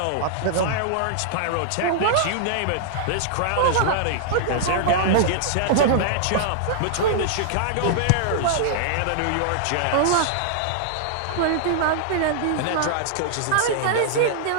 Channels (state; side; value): different; both; correlation -0.01